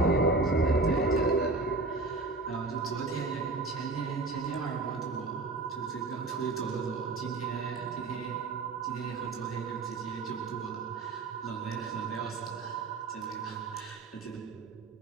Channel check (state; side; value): quieter; left; 3.6 dB